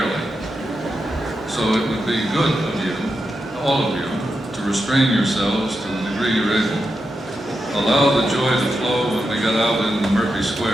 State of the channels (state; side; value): normal; both; correlation 0.87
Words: So it would be good of you, all of you, to restrain yourselves to the degree you're able. Allow the joy to flow when we get out in the Murphy